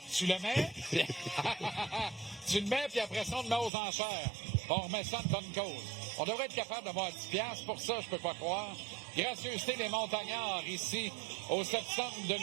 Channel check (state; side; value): drops out; left; at 3.7 s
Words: tu le mets. Tu le mets, puis après ça, on le met aux enchères. On remet ça de bonne cause. On devrait être capable d'avoir 10$. Pour ça, je peux pas croire. Gracieuseté des montagnards ici, au septembre de